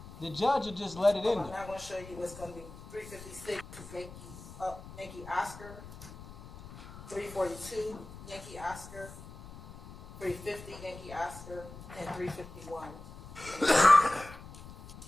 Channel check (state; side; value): noise; left; rumble, 15 dB below the sound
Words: The judge will just let it in there. I'm going to show you what's going to be 356 Yankee Oscar, 342 Yankee Oscar, 350 Yankee Oscar, and 351.